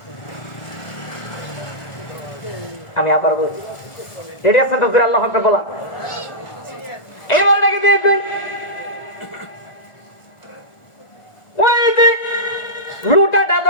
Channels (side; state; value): right; late; 1.4 ms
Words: আমি আবার বলছি, রেডি আছেন তো? আল্লাহ হাফেজ বলা এবার নাকি দেখবেন ওই যে লুটাটা